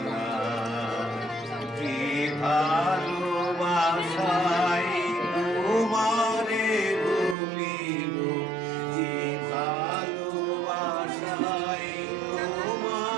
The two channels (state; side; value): drops out; left; at 7.4 s